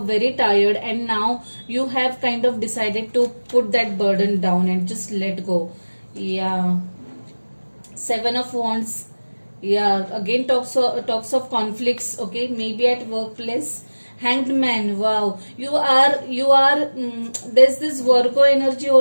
tired, and now you have kind of decided to put that burden down and just let go. Yeah. 7 of wands. Yeah, again talks of conflicts, okay, maybe at workplace. Hanged man. Wow, there's this Virgo energy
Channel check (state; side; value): inverted; both; correlation -1.00